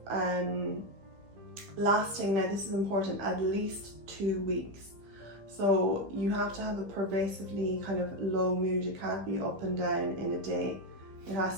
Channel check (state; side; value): late; left; 15 ms